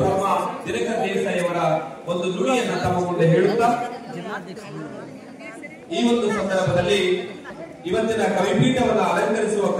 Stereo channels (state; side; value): identical; both; correlation 1.00